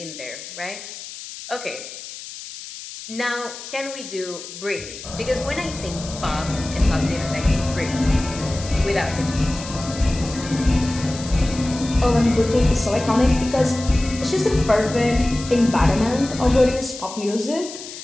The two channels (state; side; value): noise; left; hiss, 12 dB below the sound